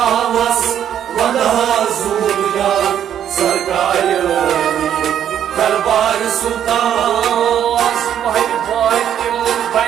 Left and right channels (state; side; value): quieter; left; 9.8 dB